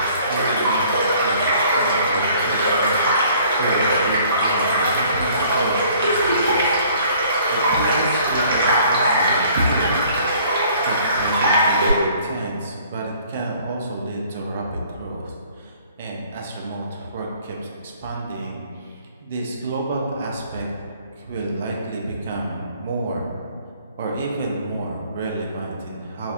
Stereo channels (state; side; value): inverted; both; correlation -0.56